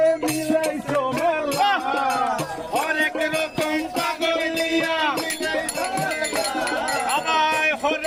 মিলাইছো মেলা অনেক রকম পাগল দিয়া আবার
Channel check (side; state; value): both; identical; correlation 1.00